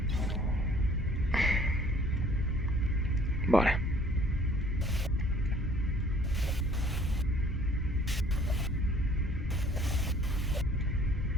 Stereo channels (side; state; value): both; normal; correlation 0.56